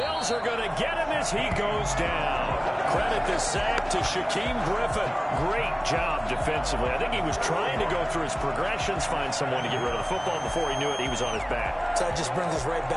are going to get him as he goes down. Credit the sack to Shaquem Griffin. Great job defensively. I think he was trying to go through his progressions, find someone to get rid of the football. Before he knew it, he was on his back. So that just brings us right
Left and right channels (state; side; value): identical; both; correlation 1.00